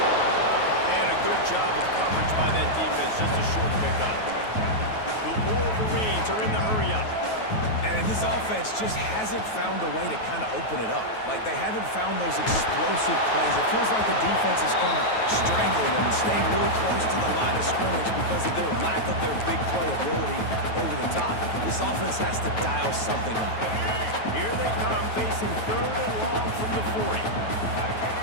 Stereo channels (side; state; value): right; late; 9.3 ms